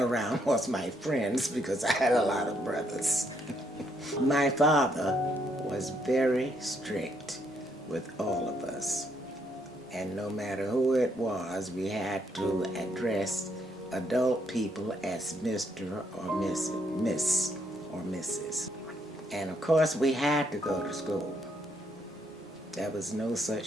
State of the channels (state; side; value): normal; both; correlation 0.73